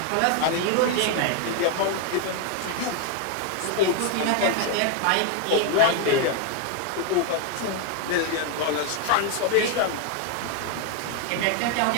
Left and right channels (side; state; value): both; different; correlation 0.01